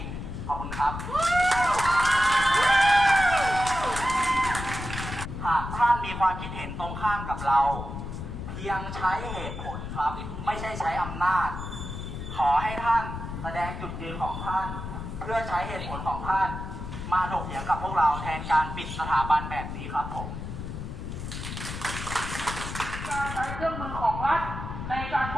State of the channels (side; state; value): left; noise; rumble, 7 dB below the sound